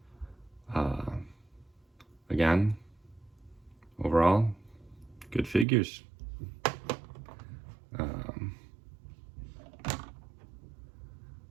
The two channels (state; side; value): drops out; left; at 5.7 s